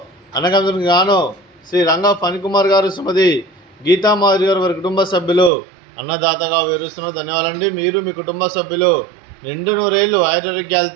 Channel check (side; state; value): left; drops out; at 5.5 s